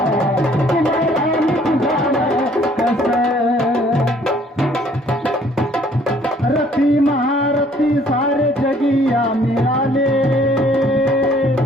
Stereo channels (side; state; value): both; normal; correlation 0.60